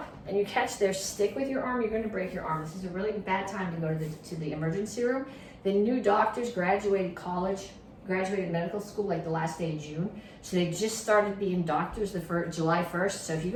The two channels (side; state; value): both; identical; correlation 1.00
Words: and you catch their stick with your arm, you're going to break your arm. This is a really bad time to go to the emergency room. The new doctors graduated college, graduated medical school like the last day of June. So they just started being doctors July 1st. So if you